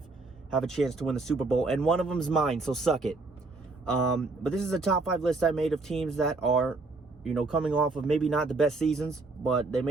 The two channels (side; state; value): left; quieter; 3.5 dB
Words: have a chance to win the Super Bowl, and one of them is mine, so suck it. But this is a top 5 list I made of teams that are, coming off of maybe not the best seasons, but they